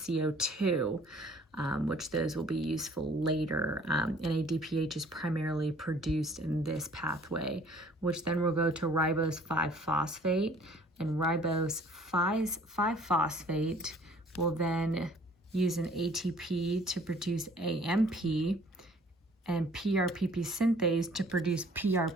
which those will be useful later. NADPH is primarily produced in this pathway, which then will go to ribose 5-phosphate, and ribose 5-phosphate will then use an ATP to produce AMP, and PRPP synthase to produce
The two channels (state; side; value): normal; both; correlation 0.55